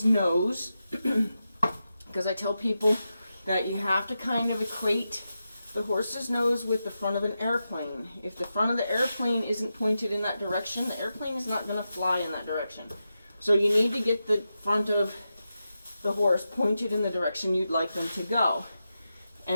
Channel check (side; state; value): both; inverted; correlation -0.89